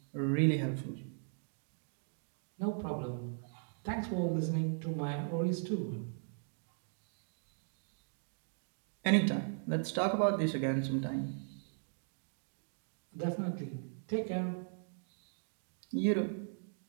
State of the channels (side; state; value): left; silent; digital silence